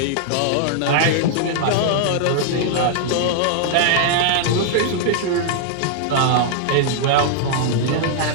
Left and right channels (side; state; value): both; different; correlation -0.01